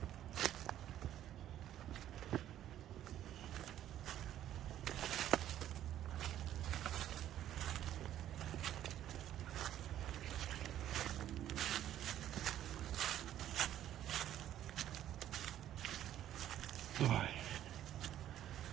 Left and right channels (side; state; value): left; quieter; 11.8 dB